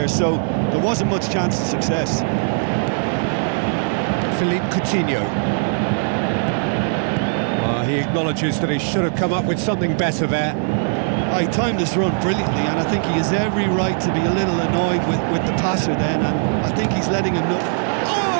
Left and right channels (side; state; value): left; silent; digital silence